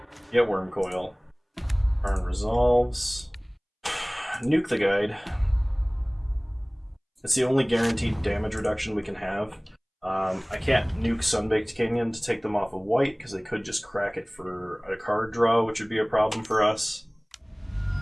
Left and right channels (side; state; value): both; identical; correlation 1.00